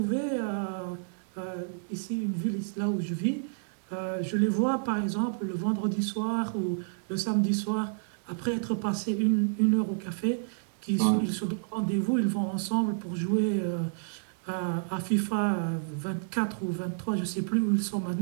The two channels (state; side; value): silent; left; digital silence